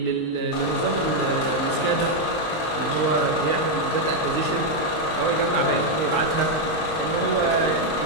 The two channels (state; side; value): late; right; 19 ms